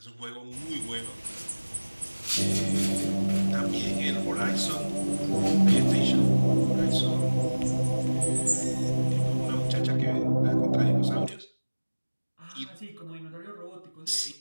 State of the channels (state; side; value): inverted; both; correlation -1.00